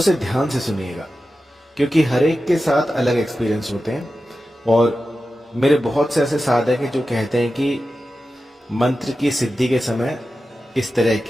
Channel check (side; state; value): both; normal; correlation 0.93